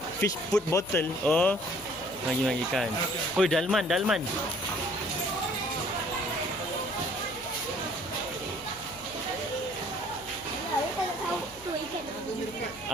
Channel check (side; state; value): left; noise; hum, 21 dB below the sound